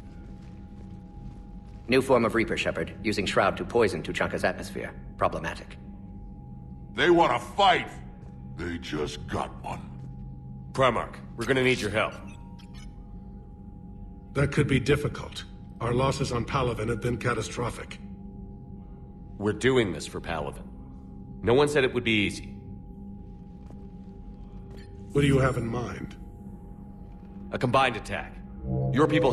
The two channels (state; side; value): identical; both; correlation 1.00